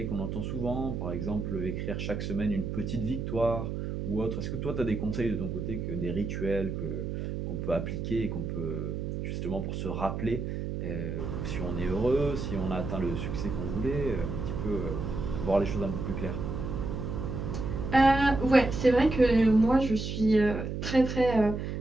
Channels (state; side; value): noise; right; hum, 4 dB below the sound